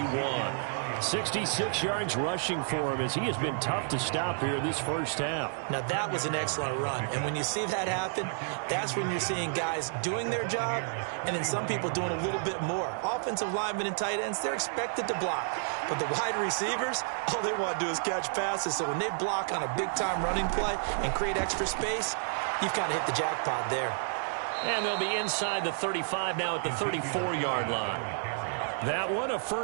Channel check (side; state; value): left; silent; digital silence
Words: 66 yards rushing for him as he has been tough to stop here this first half. Now that was an excellent run. And when you see that happen, that's when you're seeing guys doing their job and then some people doing a little bit more. Offensive linemen and tight ends, they're expected to block. But the wide receivers, all they want to do is catch passes. So when they block on a big-time running play and create extra space, you've kind of hit the jackpot there. And they'll be inside the 35 now at the 34-yard line. That one, a